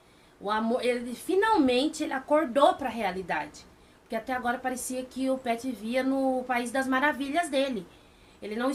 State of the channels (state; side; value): identical; both; correlation 1.00